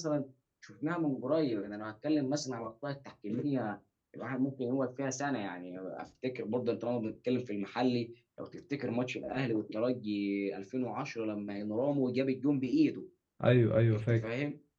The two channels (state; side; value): identical; both; correlation 1.00